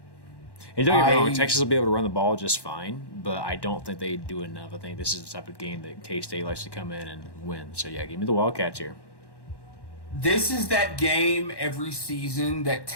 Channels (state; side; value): late; right; 1.1 ms